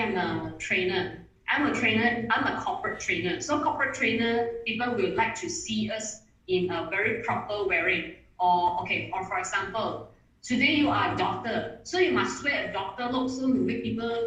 a trainer. I'm a corporate trainer. So corporate trainer, people will like to see us in a very proper wearing. Or for example, today you are a doctor, so you must wear a doctor look so to make people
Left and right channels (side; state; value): both; identical; correlation 1.00